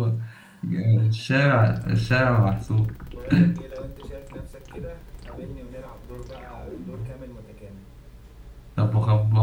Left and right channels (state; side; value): identical; both; correlation 1.00